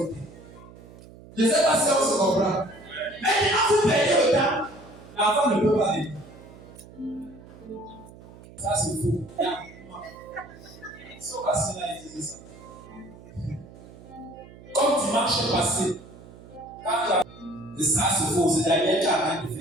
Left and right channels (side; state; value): right; noise; hum, 19 dB below the sound